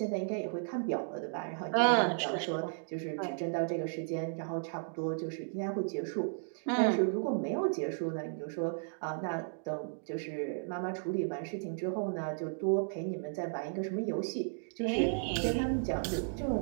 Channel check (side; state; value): left; silent; digital silence